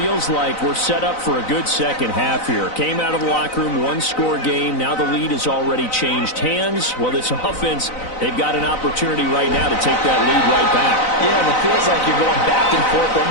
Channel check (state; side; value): late; right; 4.0 ms